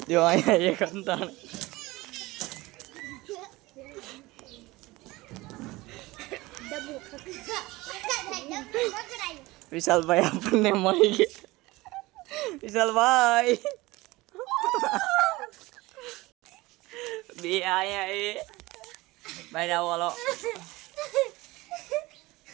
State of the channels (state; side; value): quieter; left; 20.5 dB